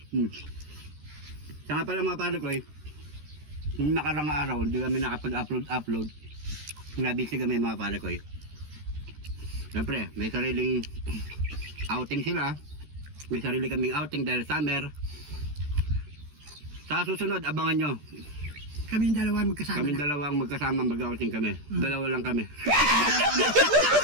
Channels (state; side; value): late; left; 13 ms